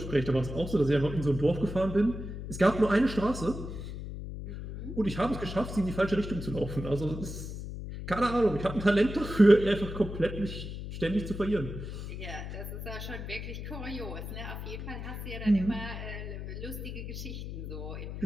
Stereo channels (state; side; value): noise; left; hum, 7 dB below the sound